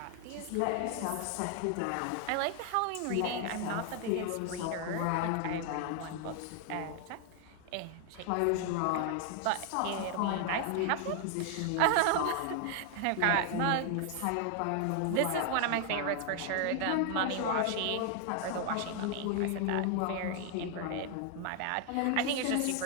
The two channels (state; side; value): different; both; correlation 0.00